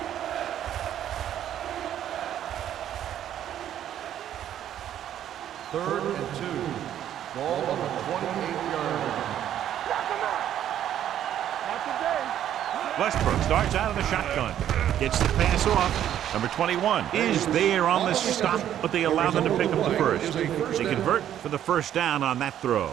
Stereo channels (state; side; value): quieter; left; 10.8 dB